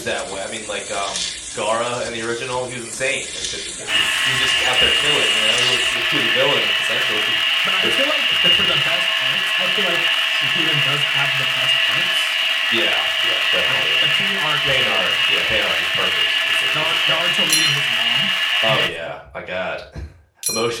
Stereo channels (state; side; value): identical; both; correlation 1.00